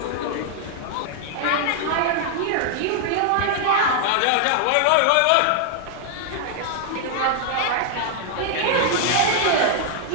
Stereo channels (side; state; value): both; different; correlation -0.01